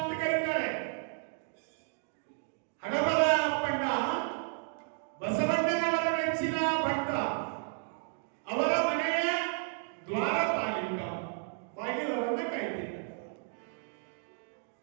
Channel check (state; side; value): silent; left; digital silence